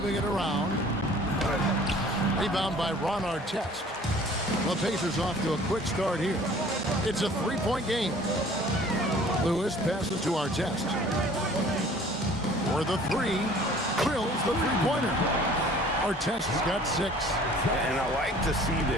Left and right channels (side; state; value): both; normal; correlation 0.51